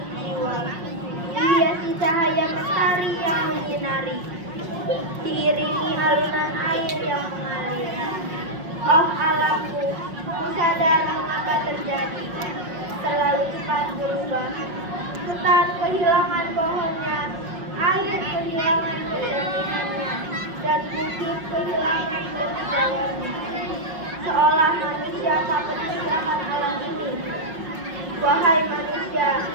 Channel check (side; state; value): left; late; 5.5 ms